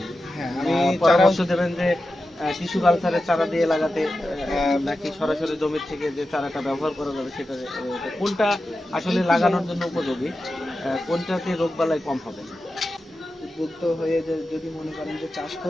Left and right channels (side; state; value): both; normal; correlation 0.92